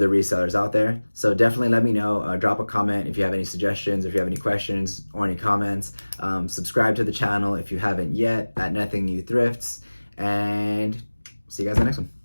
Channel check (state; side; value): inverted; both; correlation -1.00